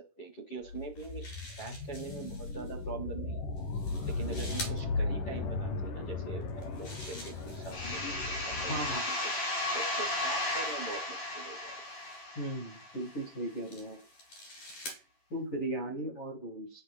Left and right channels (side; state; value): right; late; 11 ms